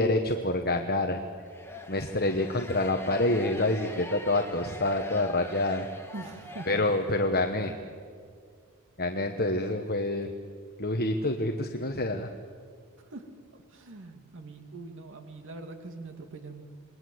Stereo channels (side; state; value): both; normal; correlation 0.01